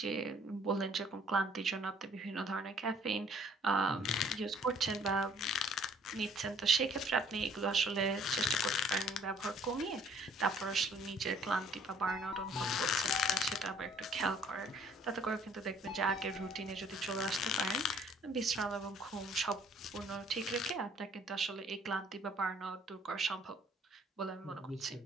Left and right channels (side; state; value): both; normal; correlation 0.58